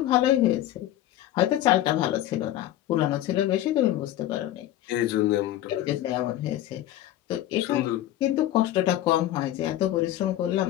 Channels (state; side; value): quieter; right; 13.5 dB